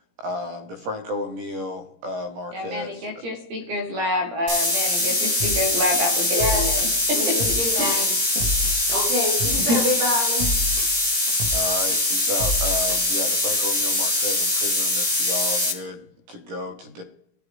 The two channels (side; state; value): left; late; 17 ms